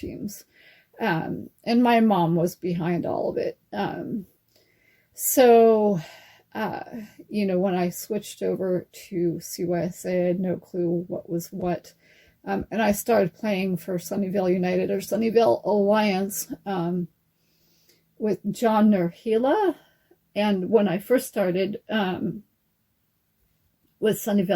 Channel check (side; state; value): both; identical; correlation 1.00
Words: And my mom was behind all of it. So, you know, when I switched over to CYSA, I had no clue what was what. And I started playing for Sunnyvale United or Sunnyvale Alliance with John Nurhila. And when I first started with